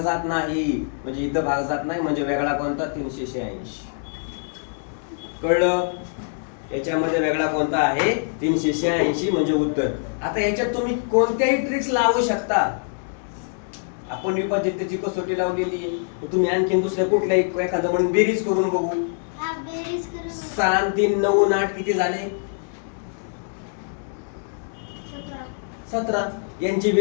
जात नाही म्हणजे इथं भाग जात नाही, म्हणजे वेगळा कोणता 386. कळलं. याच्यामध्ये वेगळा कोणता आहे 386 म्हणजे उत्तर. आता याच्यात तुम्ही कोणत्याही ट्रिक्स लावू शकता. आपण विभाजितची कसोटी लावलेली आहे, तुम्ही आणखीन दुसऱ्या कुठल्याही एखादं म्हणून बेरीज करून बघू. 6 आणि 3 9 आणि 8 किती झाले 17. यांची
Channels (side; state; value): right; silent; digital silence